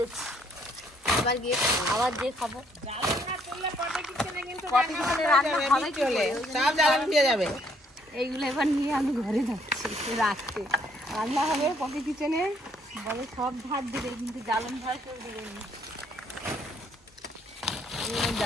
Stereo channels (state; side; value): normal; both; correlation 0.67